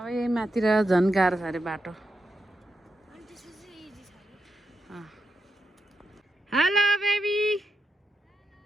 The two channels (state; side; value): normal; both; correlation 0.86